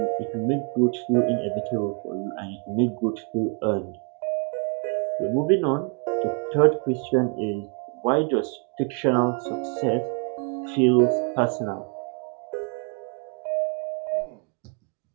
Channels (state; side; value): quieter; left; 36.3 dB